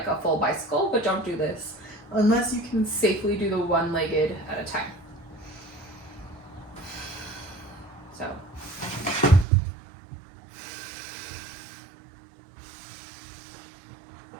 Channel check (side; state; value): left; drops out; at 9.5 s